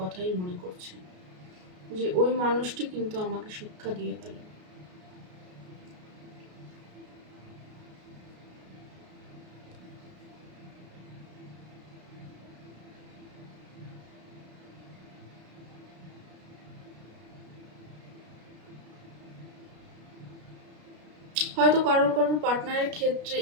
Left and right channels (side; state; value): left; late; 33 ms